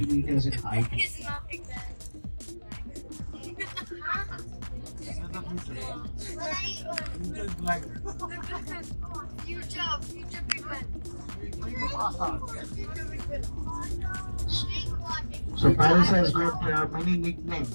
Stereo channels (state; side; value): inverted; both; correlation -1.00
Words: meters in height. So Paris has got many